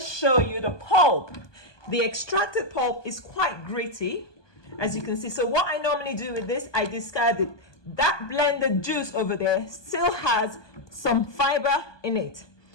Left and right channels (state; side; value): late; right; 1.2 ms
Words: you the pulp. The extracted pulp is quite gritty, as you can see. So what I normally do with this, I discard it. That blended juice over there still has some fiber in it.